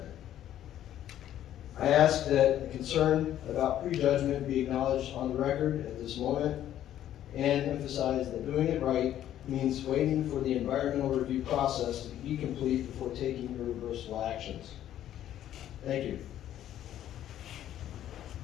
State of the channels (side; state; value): right; quieter; 11.7 dB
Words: I ask that the concern about prejudgment be acknowledged on the record at this moment and emphasize that doing it right means waiting for the environmental review process to be complete before taking irreversible actions. Thank you.